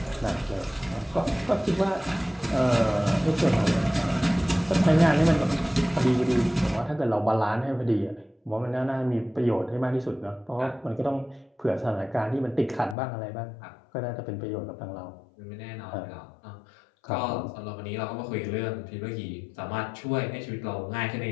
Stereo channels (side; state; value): right; drops out; at 13.0 s